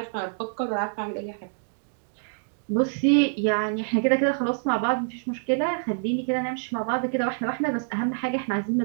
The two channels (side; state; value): left; silent; digital silence